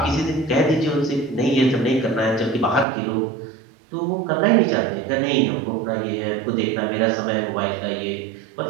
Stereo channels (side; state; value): left; drops out; at 2.9 s